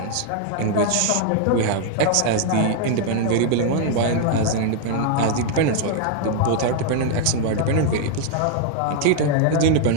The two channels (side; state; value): both; different; correlation 0.00